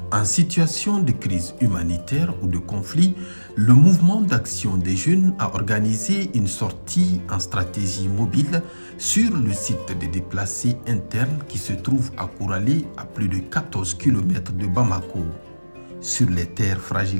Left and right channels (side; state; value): both; inverted; correlation -1.00